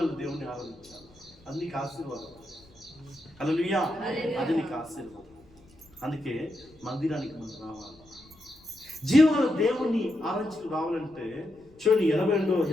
దేవుని ఆరాధించాలి, అది నీకు ఆశీర్వాదం. హల్లెలూయా. అది నీకు ఆశీర్వాదం. అందుకే మందిరానికి మనం రావాలి. జీవగల దేవుణ్ణి ఆరాధించుకు రావాలంటే చూడండి,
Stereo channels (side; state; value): left; noise; rumble, 27 dB below the sound